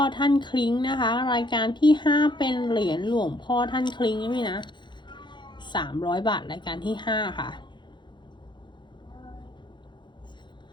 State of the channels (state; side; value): late; right; 0.22 ms